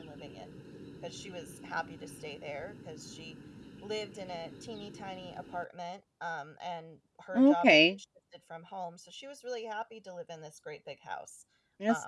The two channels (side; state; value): both; identical; correlation 1.00